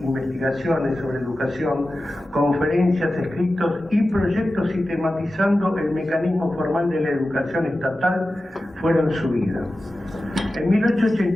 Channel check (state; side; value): normal; both; correlation 0.94